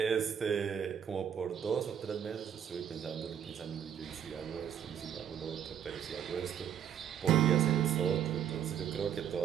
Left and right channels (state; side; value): quieter; left; 8.9 dB